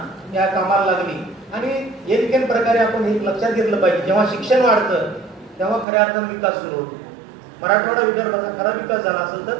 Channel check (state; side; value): drops out; left; at 5.9 s